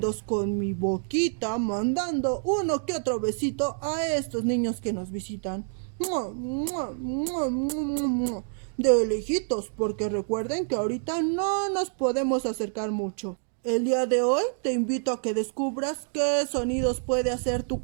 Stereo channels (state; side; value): silent; left; digital silence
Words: con mi boquita, mandando uno que otro besito a estos niños que nos visitan. De lejitos, porque recuerden que ahorita no nos podemos acercar mucho. El día de hoy te invito a que descubras qué sonidos puede hacer tu